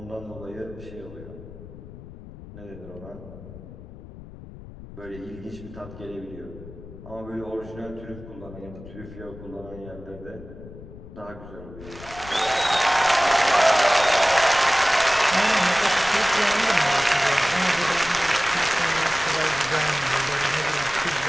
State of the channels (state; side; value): noise; left; rumble, 16 dB below the sound